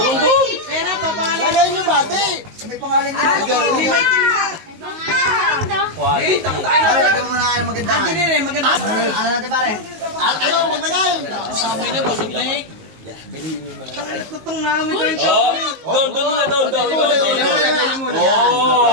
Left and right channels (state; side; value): late; left; 19 ms